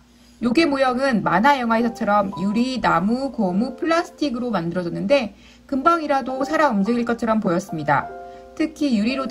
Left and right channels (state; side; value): identical; both; correlation 1.00